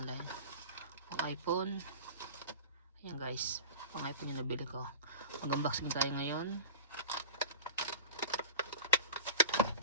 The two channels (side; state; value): both; inverted; correlation -0.35